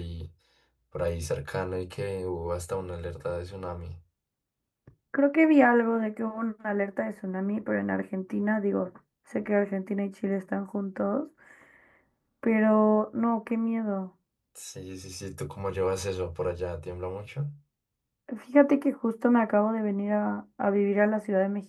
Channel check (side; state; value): both; identical; correlation 1.00